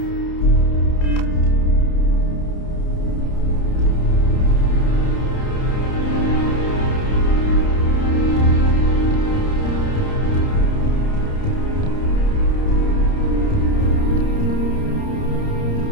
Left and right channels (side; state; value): right; late; 30 ms